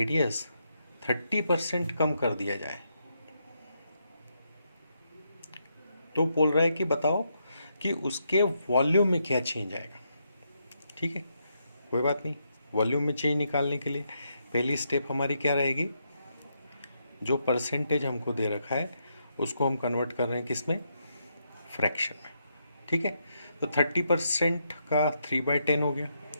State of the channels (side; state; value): both; inverted; correlation -0.80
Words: 30% कम कर दिया जाए तो बोल रहा है कि बताओ कि उसके वॉल्यूम में क्या चेंज आएगा। ठीक है, कोई बात नहीं। वॉल्यूम में चेंज निकालने के लिए पहली स्टेप हमारी क्या रहेगी, जो परसेंटेज हमको दे रखा है उसको हम कन्वर्ट कर रहे हैं किस में, फ्रैक्शन में। ठीक है, तो 30% का 3/10 हो गया।